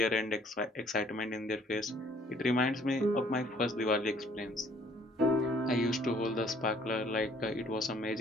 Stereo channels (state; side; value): normal; both; correlation 0.60